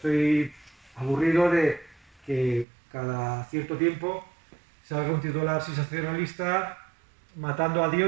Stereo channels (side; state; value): left; drops out; at 2.7 s